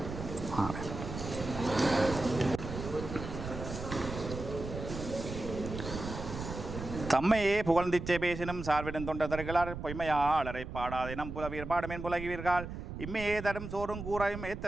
தம்மையே புகழ்ந்திச்சை பேசினும் சார்விடும் தொண்டதர்களார் பொய்மையாளரை பாடாதேனம் புலவீர் பாடுமேன் புலகிவீர்கள் இம்மையே தரும் சோறும் கூறாயும்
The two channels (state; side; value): noise; right; rumble, 8 dB below the sound